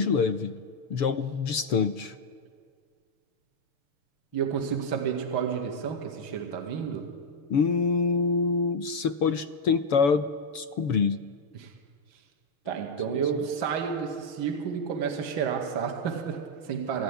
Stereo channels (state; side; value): late; right; 7.0 ms